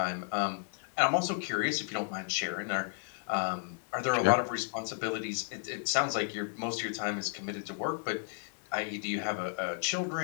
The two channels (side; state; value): right; silent; digital silence